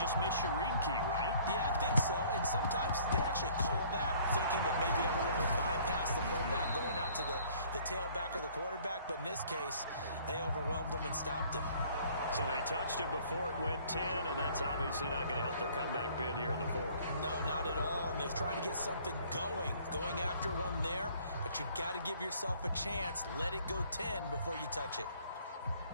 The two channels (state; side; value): inverted; both; correlation -0.56